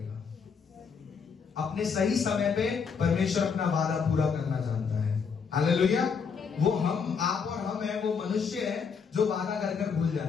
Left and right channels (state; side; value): quieter; right; 6.0 dB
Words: अपने सही समय पे परमेश्वर अपना वादा पूरा करना जानता है। हालेलुया। वो हम, आप और हम है, वो मनुष्य है जो वादा कर कर भूल